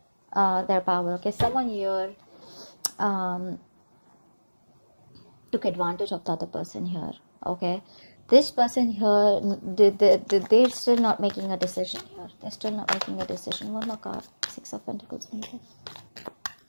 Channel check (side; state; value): both; inverted; correlation -1.00